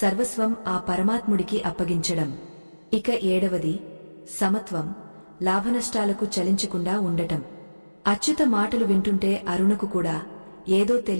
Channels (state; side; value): inverted; both; correlation -1.00